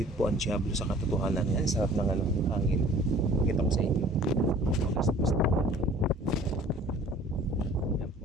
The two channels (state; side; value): normal; both; correlation 0.50